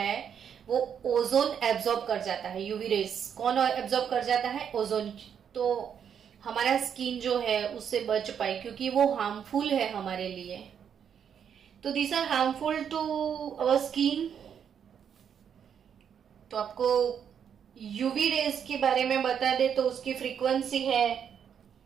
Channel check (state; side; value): quieter; left; 8.0 dB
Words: वो ओजोन एब्जॉर्ब कर जाता है। यूवी रेज कौन एब्जॉर्ब कर जाता है? ओजोन। तो हमारा स्किन जो है उससे बच पाए क्योंकि वो हार्मफुल है हमारे लिए। तो this are harmful to our skin. तो आपको यूवी रेज के बारे में बता दे तो उसकी फ्रीक्वेंसी है